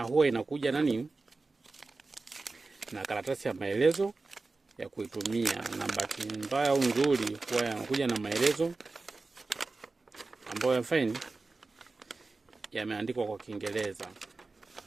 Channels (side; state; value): left; quieter; 3.6 dB